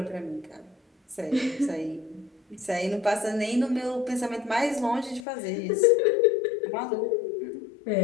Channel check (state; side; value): drops out; right; at 5.2 s